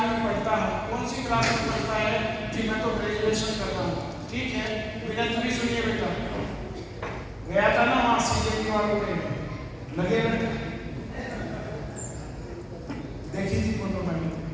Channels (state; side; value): identical; both; correlation 1.00